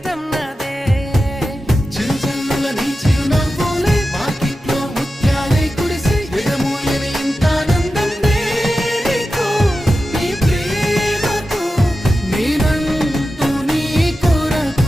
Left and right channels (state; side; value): normal; both; correlation 0.92